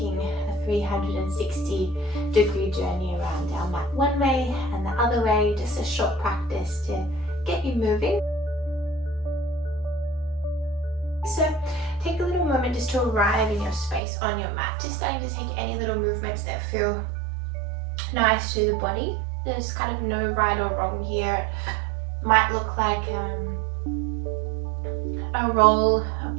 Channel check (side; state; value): left; drops out; at 14.0 s